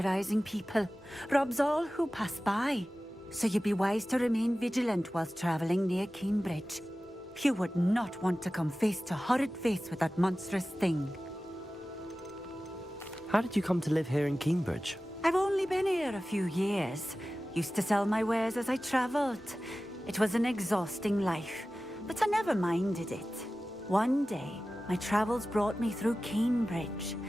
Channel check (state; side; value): normal; both; correlation 0.96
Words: people, robs all who pass by. So you'd be wise to remain vigilant whilst traveling near Cambridge. You would not want to come face to horrid face with that monstrous thing. How did you come to live here in Cambridge? I've only been here a few years. Used to sell my wares as I travelled. It was an exhausting life, but I never minded it. One day, my travels brought me through Cambridge.